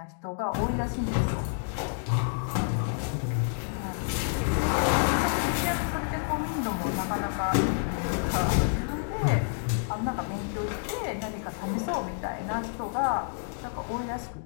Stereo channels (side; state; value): right; silent; digital silence